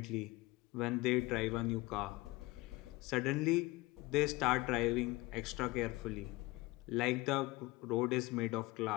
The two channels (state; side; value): quieter; right; 21.7 dB